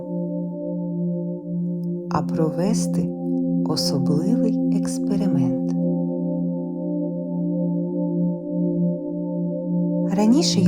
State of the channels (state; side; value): identical; both; correlation 1.00